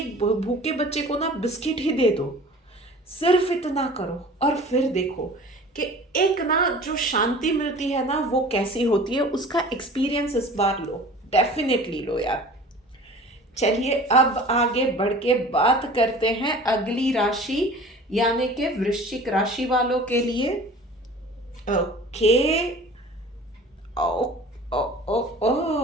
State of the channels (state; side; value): normal; both; correlation 0.43